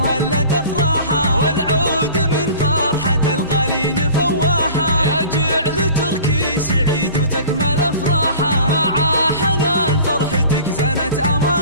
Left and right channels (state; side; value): inverted; both; correlation -0.43